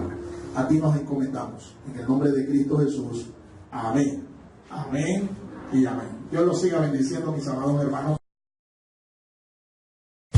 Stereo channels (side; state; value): both; identical; correlation 1.00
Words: A ti nos encomendamos. En el nombre de Cristo Jesús. Amén. Amén y amén. Dios los siga bendiciendo, mis amados hermanos.